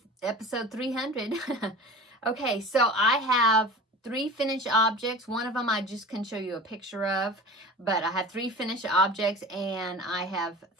episode 300. Okay, so I have 3 finished objects. One of them I just can show you a picture of, but I have 3 finished objects and I have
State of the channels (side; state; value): both; normal; correlation 0.37